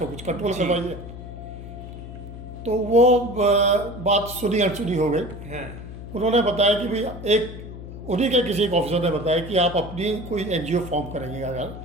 कुछ कंट्रोल करवाइए। तो वो बात सुनी अनसुनी हो गई। हाँ। उन्होंने बताया कि भाई उन्हीं के किसी एक ऑफिसर ने बताया कि आप अपनी कोई एनजीओ फॉर्म करेंगे,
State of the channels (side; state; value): left; noise; hum, 12 dB below the sound